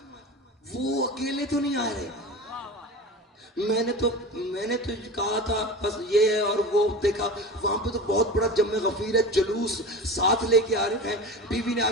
وہ اکیلے تو نہیں آ رہے۔ میں نے تو کہا تھا بس یہ ہے، اور وہ دیکھا وہاں پہ تو بہت بڑا جمع غفیر ہے، جلوس ساتھ لے کے آ رہے ہیں۔ بیوی نے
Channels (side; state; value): both; normal; correlation 0.30